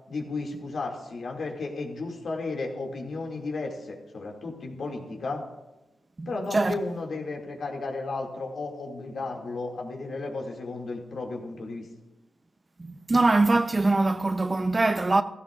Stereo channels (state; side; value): normal; both; correlation 0.94